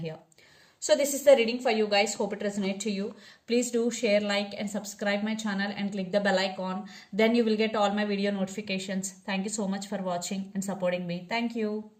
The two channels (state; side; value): identical; both; correlation 1.00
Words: So this is the reading for you guys. Hope it resonates to you. Please do share, like and subscribe my channel and click the bell icon. Then you will get all my video notifications. Thank you so much for watching and supporting me. Thank you.